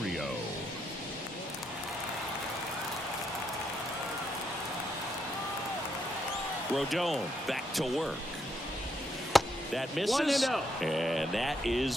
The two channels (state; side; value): normal; both; correlation 0.77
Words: Rodon back to work. That misses. And that